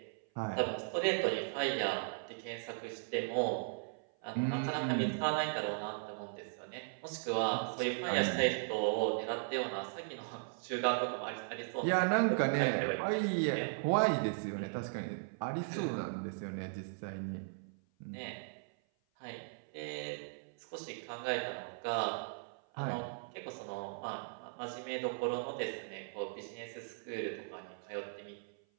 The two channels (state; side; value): silent; left; 53 dB below the other